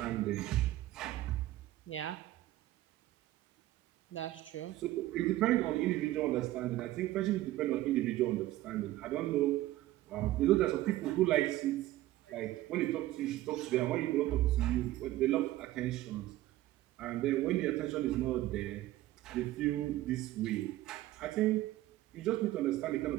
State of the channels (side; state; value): left; quieter; 15.8 dB